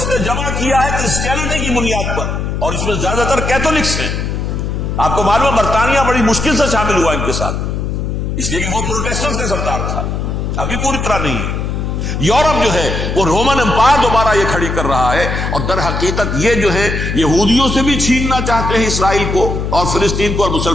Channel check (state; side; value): noise; left; hum, 2 dB below the sound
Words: نے جمع کیا ہے کرسچینٹی کی بنیاد پر، اور اس میں زیادہ تر کیتھولکس ہیں. آپ کو معلوم ہے برطانیہ بڑی مشکل سے شامل ہوا ان کے ساتھ، اس لیے کہ وہ پروٹیسٹنٹس کا سردار تھا، ابھی پوری طرح نہیں ہے. یورپ جو ہے وہ رومن امپائر دوبارہ یہ کھڑی کر رہا ہے، اور در حقیقت یہ جو ہے یہودیوں سے بھی چھیننا چاہتے ہیں اسرائیل کو اور فلسطین کو اور